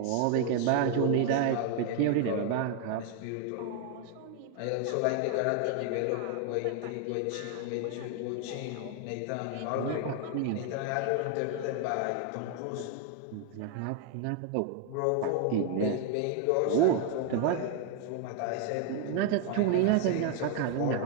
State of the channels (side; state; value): both; different; correlation 0.00